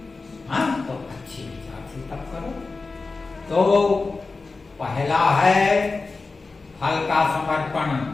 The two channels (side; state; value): right; quieter; 3.9 dB